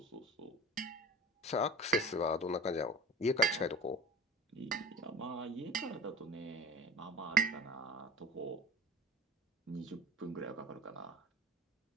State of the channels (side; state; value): both; normal; correlation 0.39